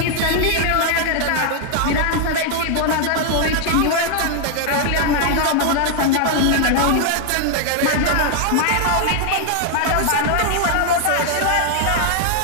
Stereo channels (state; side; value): different; both; correlation 0.00